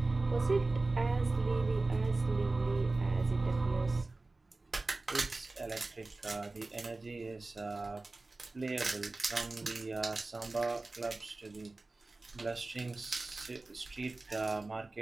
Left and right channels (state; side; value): quieter; left; 3.3 dB